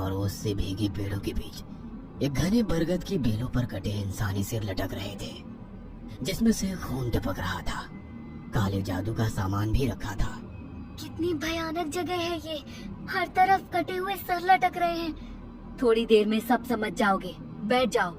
ओस से भीगी पेड़ों के बीच एक घने बरगद की बेलों पर कटे इंसानी सिर लटक रहे थे, जिसमें से खून टपक रहा था। काले जादू का सामान भी रखा था। कितनी भयानक जगह है ये, हर तरफ कटे हुए सर लटक रहे हैं। थोड़ी देर में सब समझ जाओगे, बैठ जाओ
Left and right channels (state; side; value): identical; both; correlation 1.00